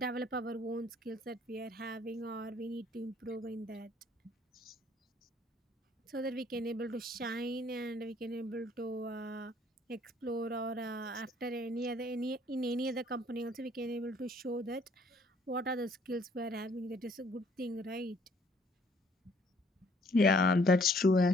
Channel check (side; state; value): both; normal; correlation 0.62